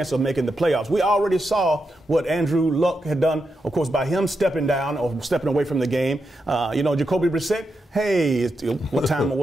of making the playoffs. We already saw what Andrew Luck had done, of course, by him stepping down or stepping away from the game. Jacoby Brissett, hey, what time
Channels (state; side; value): normal; both; correlation 0.86